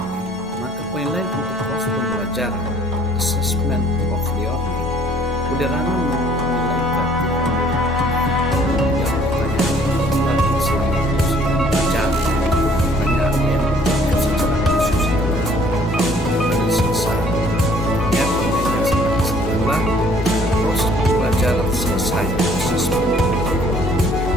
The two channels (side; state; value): both; normal; correlation 0.59